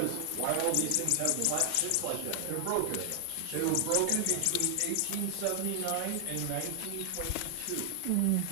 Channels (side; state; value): both; different; correlation 0.00